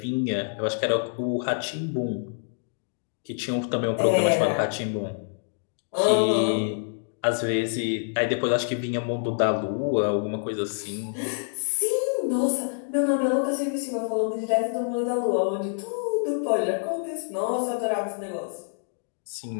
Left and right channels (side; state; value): right; silent; digital silence